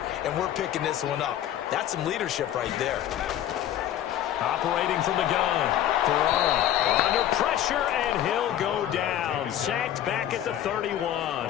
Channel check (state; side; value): quieter; right; 11.5 dB